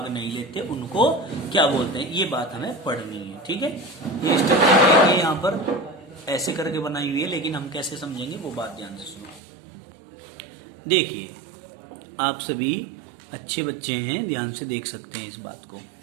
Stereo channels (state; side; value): drops out; left; at 9.4 s